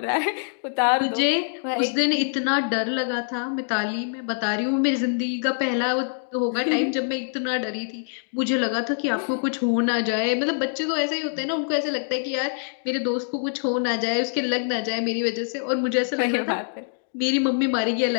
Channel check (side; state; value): right; silent; digital silence